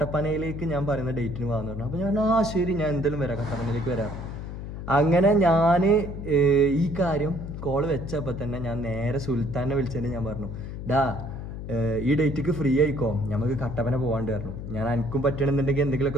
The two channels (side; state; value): left; noise; hum, 8 dB below the sound